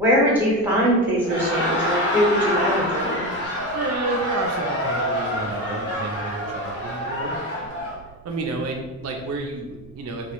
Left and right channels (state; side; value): noise; right; rumble, 22 dB below the sound